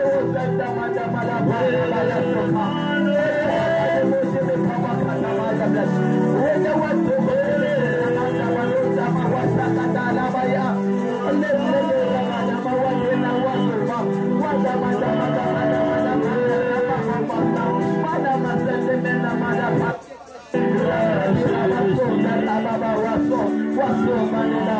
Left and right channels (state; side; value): identical; both; correlation 1.00